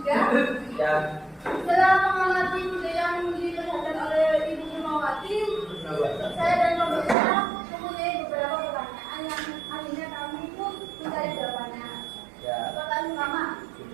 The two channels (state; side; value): drops out; left; at 7.2 s